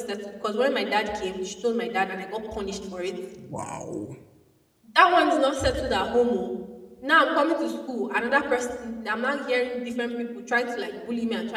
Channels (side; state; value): both; identical; correlation 1.00